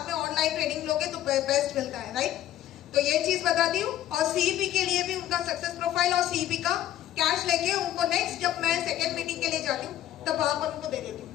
में ऑनलाइन ट्रेनिंग लोगे तो बेस्ट मिलता है, राइट। तो ये चीज बताती हूँ, और सीईपी के लिए भी उनका सक्सेस प्रोफाइल और सीईपी का कैश लेके उनको नेक्स्ट जब मैं सेकेंड मीटिंग के लिए जाती हूँ तब वहां पर उनको दे देती हूँ।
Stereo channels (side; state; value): right; quieter; 12.5 dB